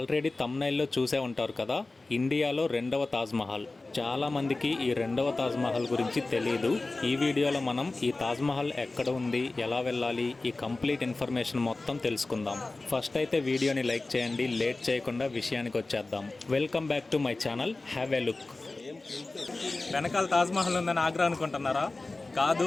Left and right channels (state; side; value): quieter; right; 3.2 dB